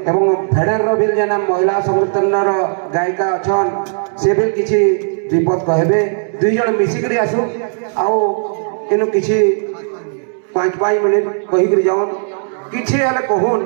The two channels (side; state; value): left; silent; 69 dB below the other